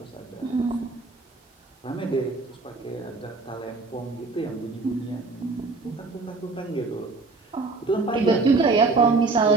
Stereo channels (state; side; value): quieter; left; 3.7 dB